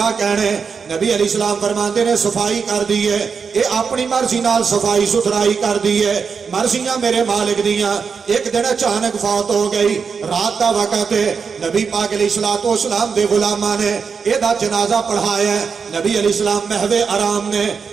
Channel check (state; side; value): quieter; left; 5.8 dB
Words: کہنے. نبی علیہ السلام فرماتے نے صفائی کر دی ہے, یہ اپنی مرضی نال صفائی ستھرائی کر دی ہے, مرضیاں میرے مالک دیاں. ایک دن اچانک فوت ہو گئی, رات دا وقت ہے, نبی پاک علیہ السلام دے غلاماں نے یہ دا جنازہ پڑھایا ہے. نبی علیہ السلام محو آرام نے